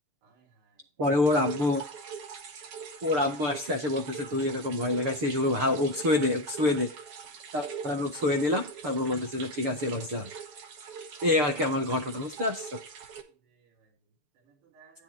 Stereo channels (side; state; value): left; late; 6.8 ms